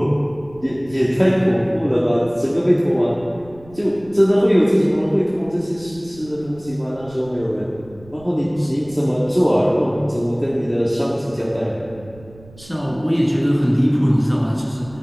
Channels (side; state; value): right; noise; rumble, 22 dB below the sound